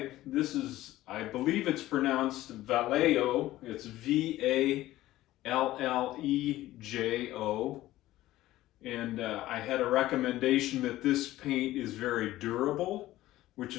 This is, I believe it's pronounced Vallejo. It's V-A-L-L-E-J-O. And I had a recommendation that this paint is very durable, which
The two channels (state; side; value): quieter; right; 15.7 dB